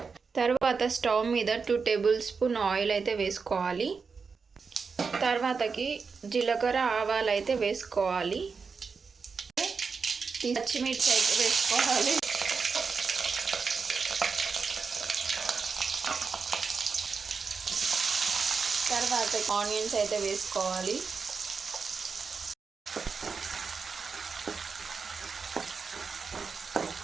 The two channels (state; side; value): quieter; left; 5.2 dB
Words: తర్వాత స్టవ్ మీద 2 టేబుల్ స్పూన్ ఆయిల్ అయితే వేసుకోవాలి. తర్వాతకి జీలకర్ర ఆవాలు అయితే వేసుకోవాలి. పచ్చిమిర్చి అయితే వేసుకోవాలి. తర్వాత ఆనియన్స్ అయితే వేసుకోవాలి.